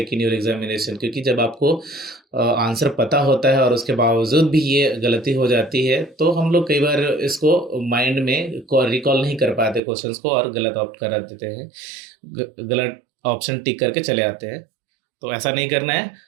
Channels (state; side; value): drops out; left; at 9.8 s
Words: in your examination, क्योंकि जब आपको आंसर पता होता है और उसके बावजूद भी ये गलती हो जाती है, तो हम लोग कई बार इसको माइंड में रिकॉल नहीं कर पाते क्वेश्चंस को और गलत ऑप्ट करा देते हैं, गलत ऑप्शन टिक करके चले आते हैं। तो ऐसा नहीं करना है।